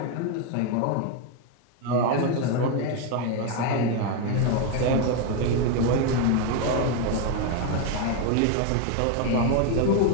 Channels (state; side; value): different; both; correlation 0.02